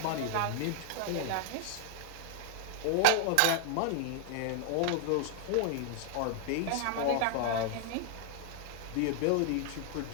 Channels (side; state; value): both; different; correlation -0.01